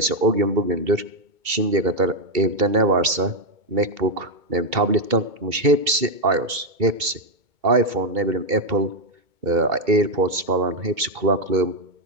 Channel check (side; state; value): left; late; 2.7 ms